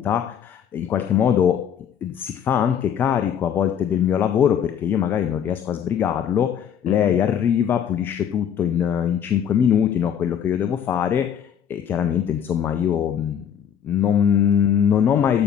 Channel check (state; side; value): quieter; right; 8.7 dB